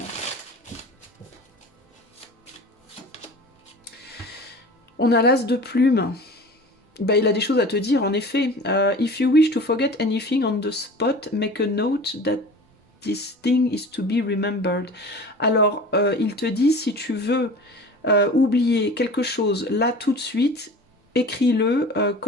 On a l'as de plume. bah, il a des choses à te dire, en effet. If you wish to forget anything on the spot, make a note that this thing is to be remembered. Alors, il te dit, si tu veux oublier quelque chose là tout de suite, écris-le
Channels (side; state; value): both; normal; correlation 0.39